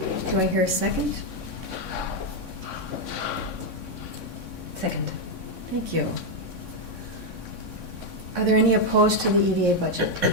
Do I hear a second? Second. Thank you. Are there any opposed to the EDA budget?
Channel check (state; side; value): late; right; 3.6 ms